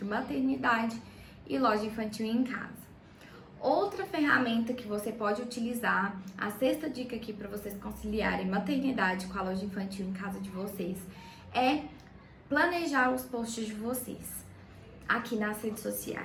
maternidade e loja infantil em casa. Outra ferramenta que você pode utilizar, a 6ª dica aqui para vocês conciliarem maternidade com a loja infantil em casa de vocês, é planejar os posts de vocês aqui nas redes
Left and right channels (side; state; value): both; identical; correlation 1.00